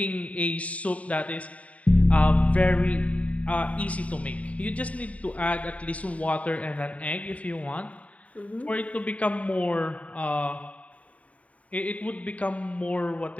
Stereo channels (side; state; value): right; late; 0.067 ms